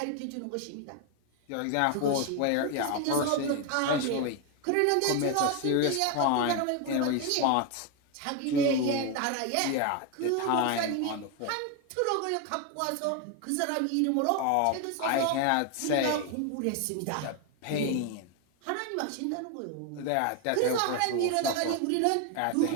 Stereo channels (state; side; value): different; both; correlation 0.01